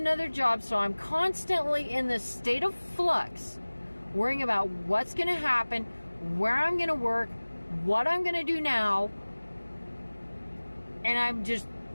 job. So I'm constantly in this state of flux, worrying about what's going to happen, where I'm going to work, what I'm going to do now. And I'm just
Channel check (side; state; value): both; inverted; correlation -1.00